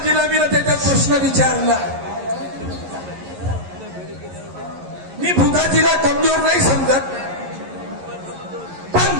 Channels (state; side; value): late; left; 11 ms